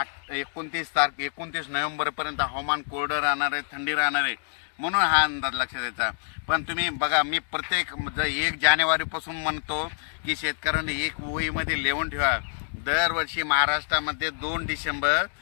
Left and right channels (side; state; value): right; silent; digital silence